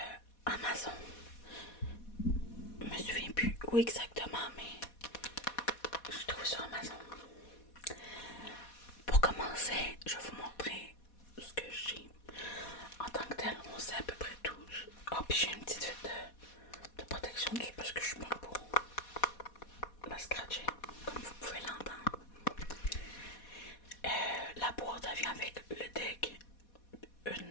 Amazon. Je me souviens plus où exactement, mais je trouve sur Amazon. Pour commencer, je vais vous montrer ce que j'ai. En tant que tel, on sait à peu près tout. Oh, puis j'ai une petite fête de protection dessus parce que je suis bonne pour la scratcher, comme vous pouvez l'entendre. La boîte elle vient avec le deck,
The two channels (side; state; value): right; late; 4.2 ms